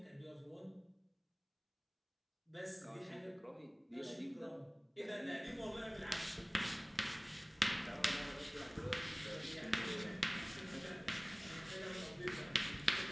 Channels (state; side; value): identical; both; correlation 1.00